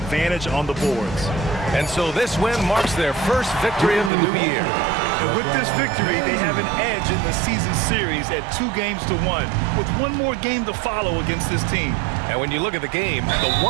on the boards. And so this win marks their first victory of the new year. And with this victory, they have an edge in the season series at 2-1, with one more game to follow against this team. And when you look at the game, the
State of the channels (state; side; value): drops out; left; at 4.1 s